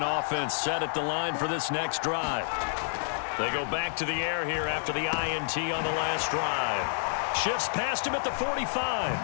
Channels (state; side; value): silent; right; 56 dB below the other